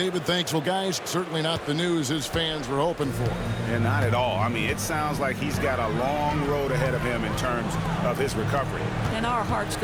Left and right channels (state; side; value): identical; both; correlation 1.00